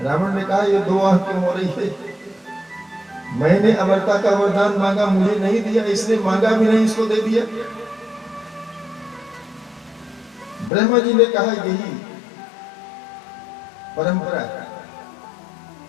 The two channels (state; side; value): drops out; right; at 10.7 s